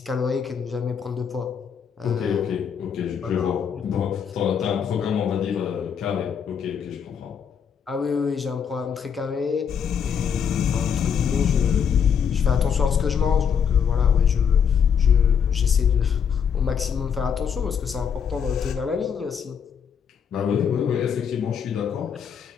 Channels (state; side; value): quieter; right; 7.4 dB